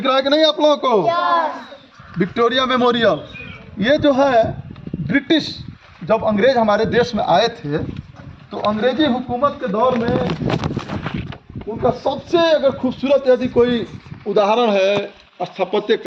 रहा है कि नहीं आप लोगों को? Victoria memorial. ये जो है ब्रिटिश, जब अंग्रेज हमारे देश में आए थे तो अंग्रेजी हुकूमत के दौर में उनका सबसे अगर खूबसूरत यदि कोई उदाहरण है स्थापत्य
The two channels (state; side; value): identical; both; correlation 1.00